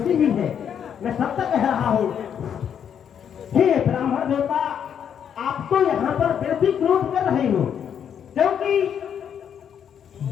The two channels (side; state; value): right; quieter; 8.4 dB